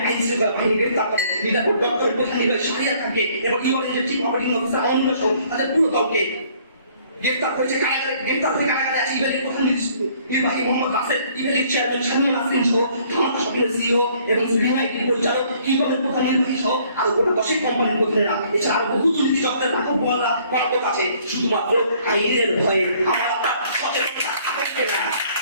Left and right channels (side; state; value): both; inverted; correlation -0.61